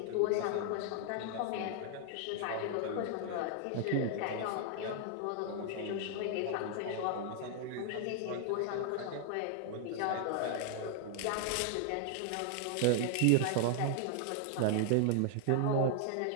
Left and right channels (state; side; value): different; both; correlation 0.00